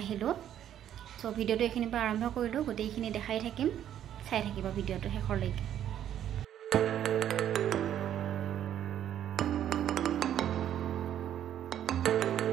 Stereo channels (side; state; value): left; quieter; 10.7 dB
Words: আহিলোঁ। চ' ভিডিঅ'টো এইখিনিৰ পৰা আৰম্ভ কৰিলোঁ, গোটেইখিনি দেখাই থাকিম, চাই থাকিব ভিডিঅ'টো শেষলৈকে।